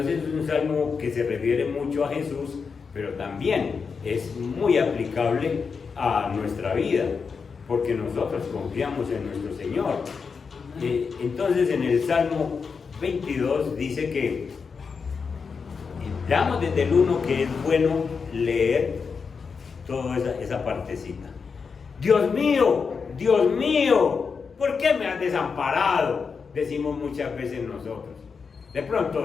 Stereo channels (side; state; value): right; quieter; 5.5 dB